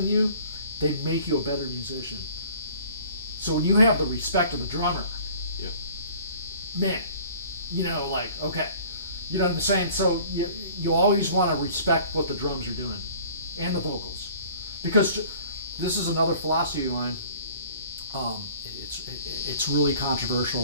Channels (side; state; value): both; inverted; correlation -0.50